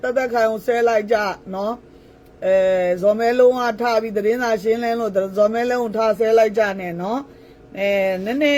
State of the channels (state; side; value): identical; both; correlation 1.00